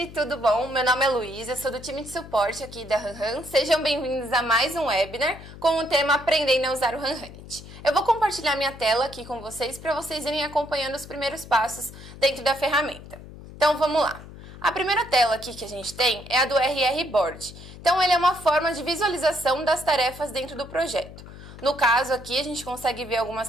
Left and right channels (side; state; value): left; noise; hum, 16 dB below the sound